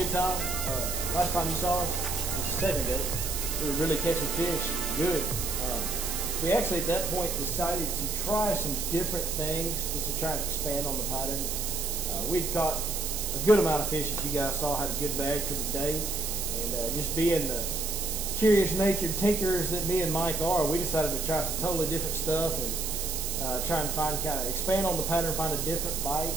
time. Last time you saw us, just a second ago, we were really catching fish. Good. We actually at that point decided to try some different things just to try and expand on the pattern. We'd caught a good amount of fish, as you guys saw, had a good bag for the day. And just being the curious natured tinkerers that me and Mike are, we decided to try some totally different stuff and try and find, kind of expand on the pattern, find a different bite.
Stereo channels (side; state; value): right; noise; hiss, 3 dB below the sound